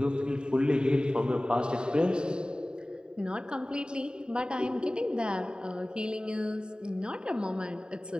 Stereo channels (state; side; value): late; left; 0.048 ms